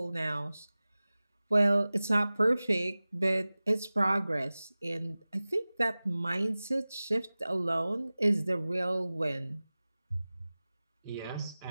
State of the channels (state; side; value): inverted; both; correlation -0.98